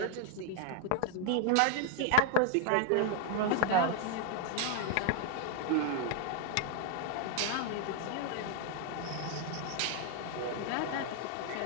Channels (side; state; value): both; different; correlation 0.00